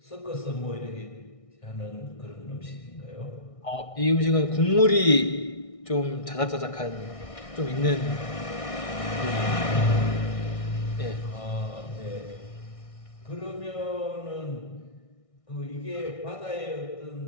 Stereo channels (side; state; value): right; late; 1.6 ms